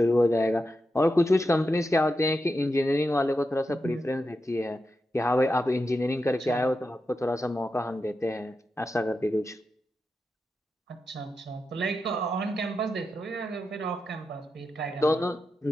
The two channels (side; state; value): both; normal; correlation 0.88